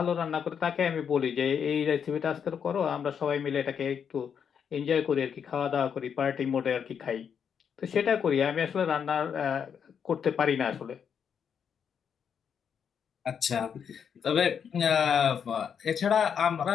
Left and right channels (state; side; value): quieter; right; 7.4 dB